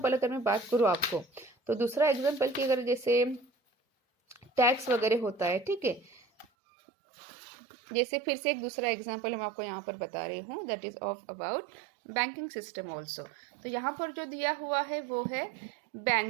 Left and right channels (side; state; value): left; drops out; at 6.5 s